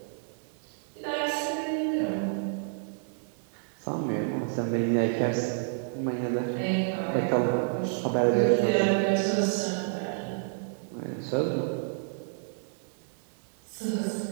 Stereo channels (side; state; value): left; silent; 58 dB below the other